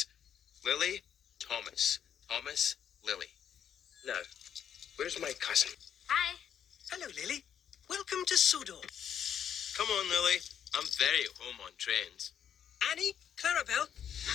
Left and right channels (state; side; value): quieter; right; 8.9 dB